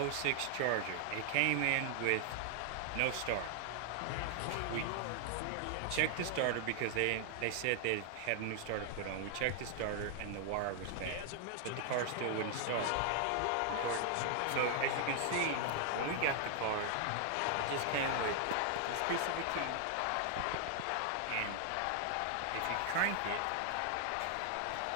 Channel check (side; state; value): both; different; correlation 0.00